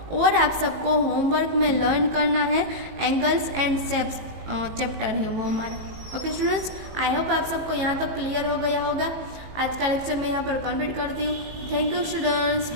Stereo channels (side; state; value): left; late; 19 ms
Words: और आप सबको होमवर्क में लर्न करना है एंगल्स एंड शेप्स चैप्टर है वो हमारा। ओके स्टूडेंट्स, आई होप आप सबको यहाँ तक क्लियर हो गया होगा। आज का लेक्चर मैं यहाँ पर कंप्लीट करती हूँ। Thank you students,